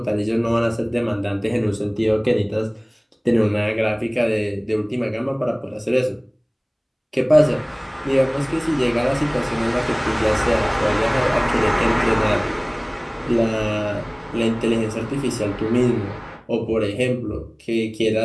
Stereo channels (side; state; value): both; identical; correlation 1.00